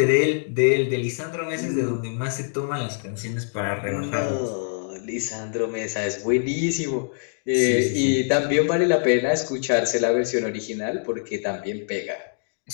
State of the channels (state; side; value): silent; right; digital silence